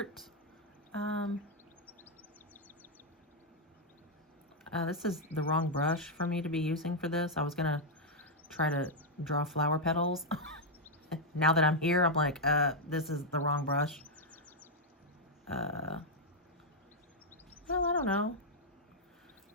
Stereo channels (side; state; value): both; normal; correlation -0.02